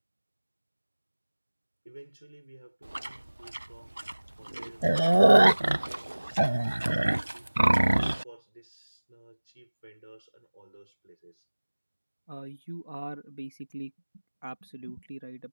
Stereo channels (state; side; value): inverted; both; correlation -1.00